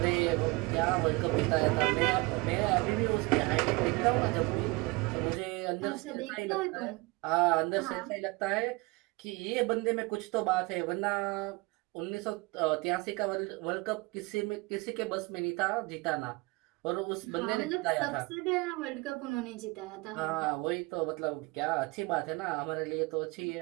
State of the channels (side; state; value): left; quieter; 25.3 dB